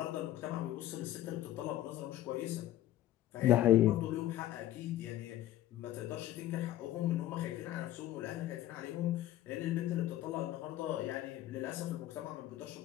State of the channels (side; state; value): right; quieter; 13.8 dB